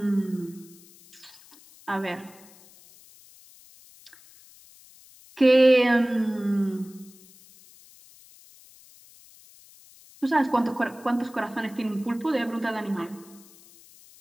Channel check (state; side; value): noise; left; hiss, 24 dB below the sound